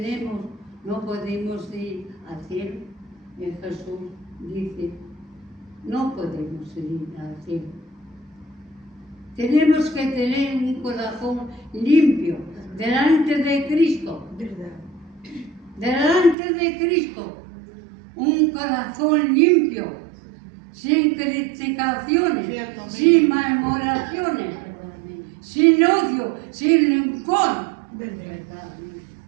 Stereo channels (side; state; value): left; drops out; at 16.4 s